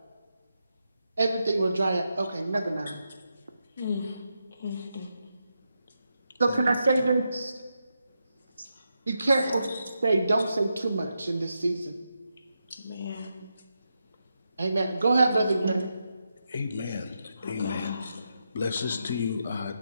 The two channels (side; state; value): both; inverted; correlation -0.86